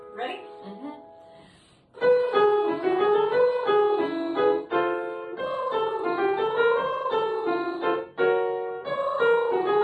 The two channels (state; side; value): identical; both; correlation 1.00